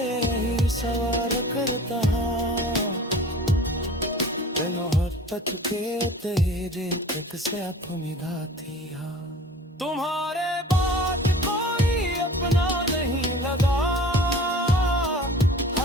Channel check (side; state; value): both; normal; correlation 0.43